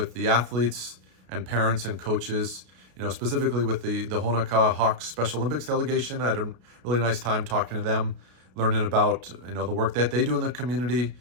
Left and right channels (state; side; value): late; left; 33 ms